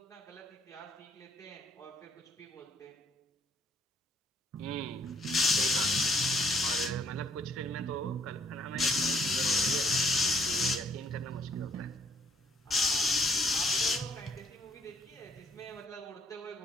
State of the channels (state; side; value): normal; both; correlation 0.64